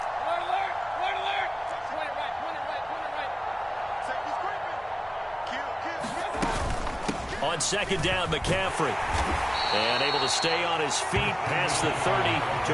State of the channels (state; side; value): identical; both; correlation 1.00